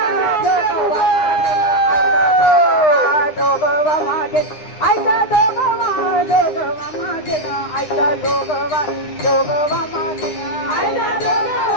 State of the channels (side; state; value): right; late; 9.8 ms